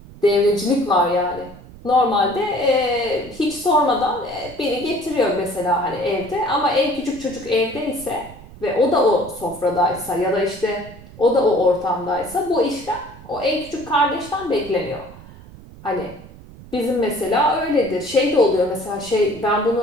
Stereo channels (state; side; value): noise; right; rumble, 19 dB below the sound